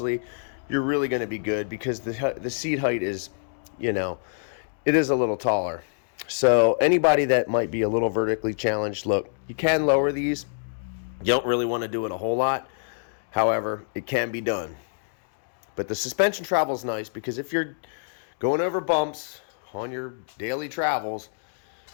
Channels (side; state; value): right; silent; digital silence